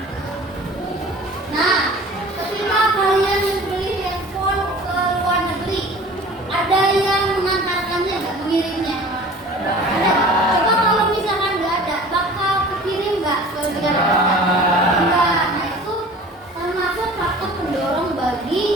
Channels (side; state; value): both; normal; correlation 0.43